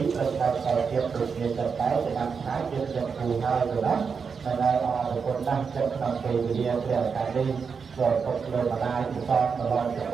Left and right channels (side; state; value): left; quieter; 5.8 dB